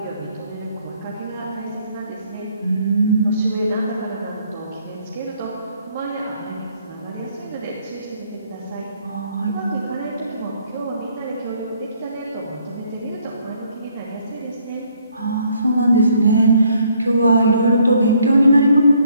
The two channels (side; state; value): both; inverted; correlation -0.67